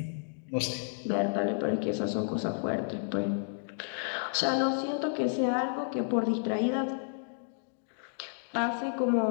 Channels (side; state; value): right; silent; digital silence